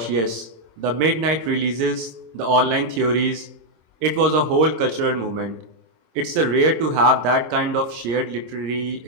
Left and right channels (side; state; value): left; late; 26 ms